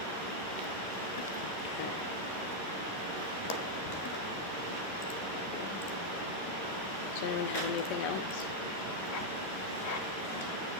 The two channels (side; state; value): right; late; 11 ms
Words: Does anyone have anything else?